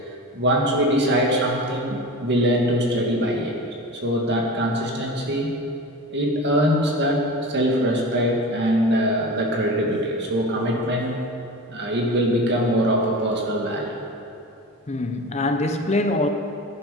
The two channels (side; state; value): both; normal; correlation 0.31